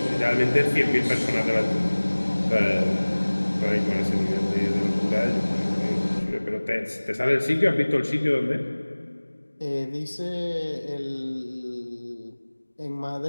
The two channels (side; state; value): both; inverted; correlation -1.00